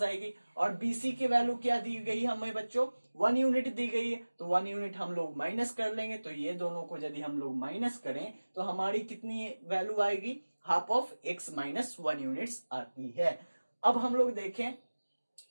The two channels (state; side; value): inverted; both; correlation -1.00